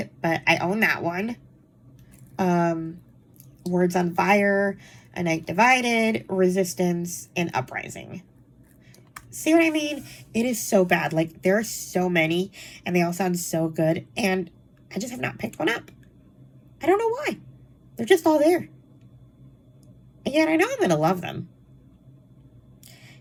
but I own that one. Words on Fire, A Night Divided, Resistance, and Uprising. See what I mean? It is so bad. Like, there are so many, and they all sound so good, and I just have not picked one up. I don't know why. They're just all there. And yet I know I'm going to love them.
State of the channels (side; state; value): both; identical; correlation 1.00